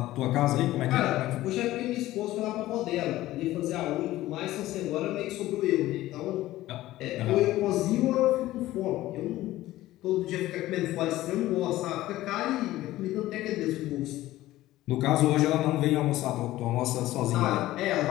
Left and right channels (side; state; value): right; quieter; 15.9 dB